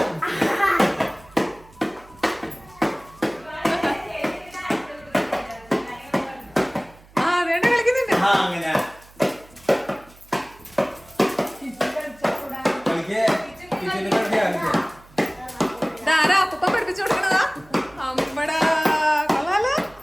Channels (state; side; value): noise; right; hum, 25 dB below the sound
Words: അങ്ങനെ ഇതാരാ അപ്പൂപ്പ പഠിപ്പിച്ചു കൊടുക്കണതാ? അമ്മടാ കൊള്ളാലോ.